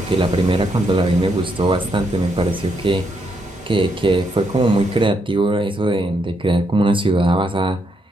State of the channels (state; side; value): normal; both; correlation 0.77